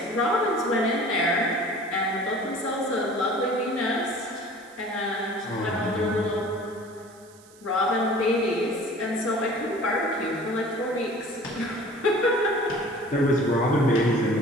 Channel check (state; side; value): noise; right; hiss, 26 dB below the sound